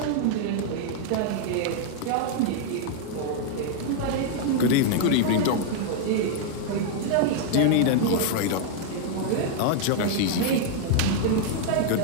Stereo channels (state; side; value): different; both; correlation -0.01